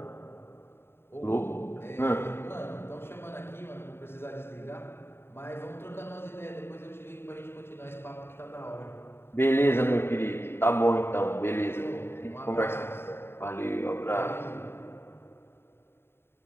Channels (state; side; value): late; right; 0.11 ms